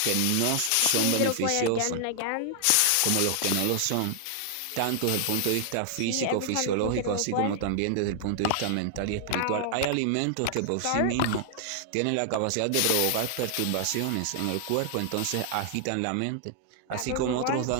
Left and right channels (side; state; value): both; different; correlation 0.00